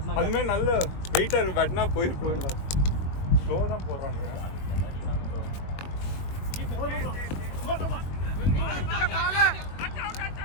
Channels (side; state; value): right; late; 21 ms